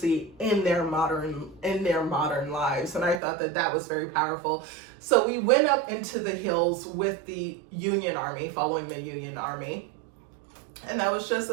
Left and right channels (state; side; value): drops out; left; at 3.2 s